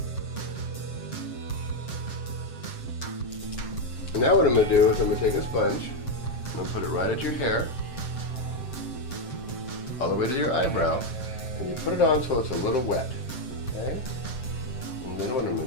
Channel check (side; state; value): right; late; 7.7 ms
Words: And now what I'm going to do is I'm going to take a sponge, I'm going to put it right at your hair, all the way to your eyebrow. And you put it on so it's a little wet, okay? And then what I'm